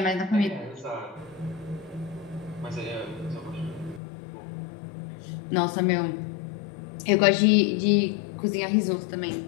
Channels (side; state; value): right; drops out; at 4.0 s